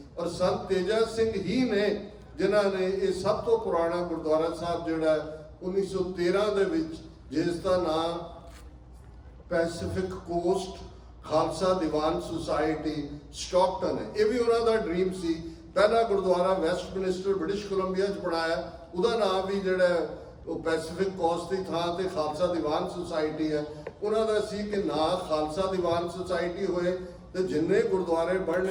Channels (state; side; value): identical; both; correlation 1.00